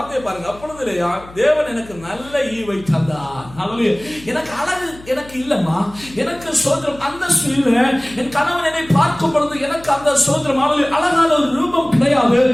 பாருங்க. அப்பொழுது லேயா, தேவன் எனக்கு நல்ல ஈவை தந்தார். ஹல்லேலூயா. எனக்கு அழகு எனக்கு இல்லம்மா, எனக்கு ஸ்தோத்திரம் அந்தஸ்து இல்ல. என் கணவன் என்னை பார்க்கும் பொழுது எனக்கு அந்த ஸ்தோத்திரம் அழகான ஒரு ரூபம் கிடையாது.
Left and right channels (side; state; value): left; noise; hum, 20 dB below the sound